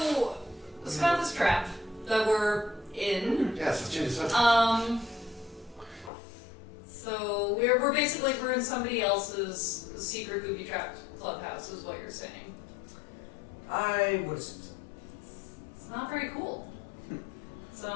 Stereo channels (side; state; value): right; drops out; at 6.1 s